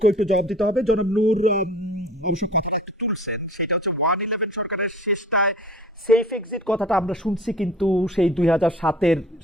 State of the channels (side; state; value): both; normal; correlation 0.45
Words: একটু জবাব দিতে হবে। জনাব নূর অবশ্য কথাটা একটু তুলছেন, সেটা হচ্ছে 111 সরকারের শেষটায় সেফ এক্সিট কথাটা আমরা শুনছি, কিন্তু সেই 2007-এর